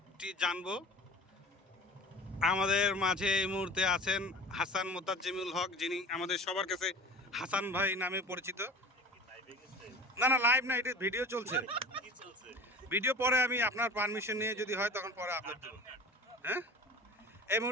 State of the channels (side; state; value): both; normal; correlation 0.38